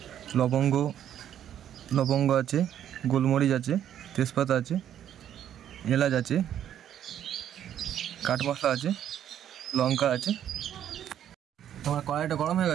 লবঙ্গ আছে, গোলমরিচ আছে, তেজপাতা আছে, এলাচ আছে, কাঠ মশলা আছে, লঙ্কা আছে। আমার কড়াইটা গরম হয়ে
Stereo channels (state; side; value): quieter; left; 10.4 dB